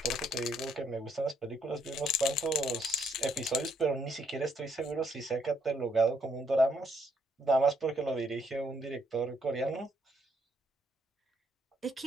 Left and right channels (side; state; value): both; normal; correlation 0.72